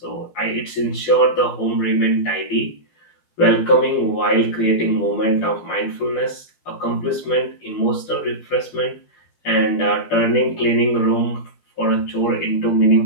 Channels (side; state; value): right; late; 12 ms